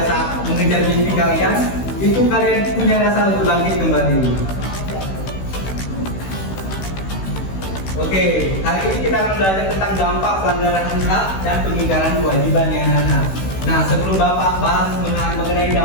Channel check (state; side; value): late; right; 16 ms